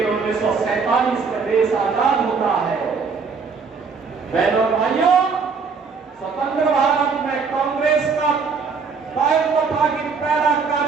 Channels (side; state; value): left; quieter; 5.2 dB